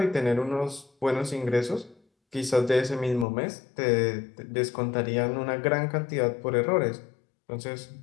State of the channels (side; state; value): right; drops out; at 3.2 s